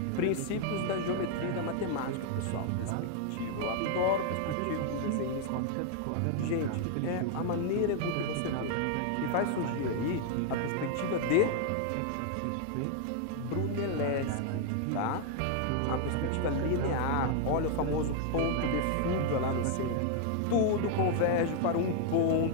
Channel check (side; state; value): both; different; correlation 0.00